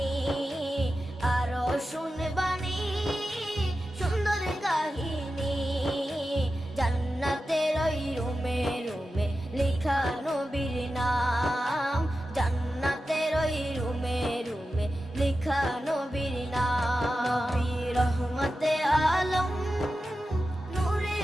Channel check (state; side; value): normal; both; correlation 0.92